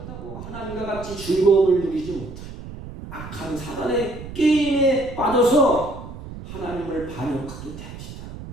하나님과 같이 즐거움을 누리지 못해요. 악한 사단의 게임에 빠져서 하나님을 반역하게 됩니다.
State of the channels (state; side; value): noise; right; rumble, 12 dB below the sound